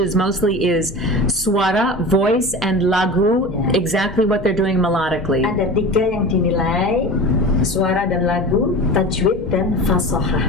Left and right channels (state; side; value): normal; both; correlation 0.33